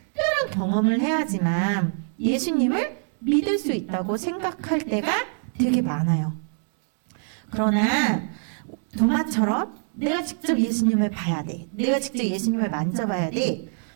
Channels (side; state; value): left; silent; 62 dB below the other